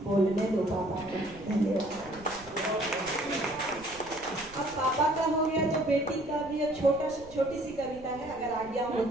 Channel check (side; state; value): right; noise; rumble, 21 dB below the sound